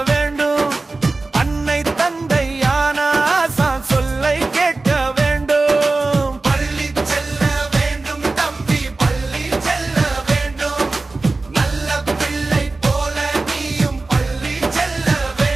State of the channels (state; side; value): quieter; left; 3.4 dB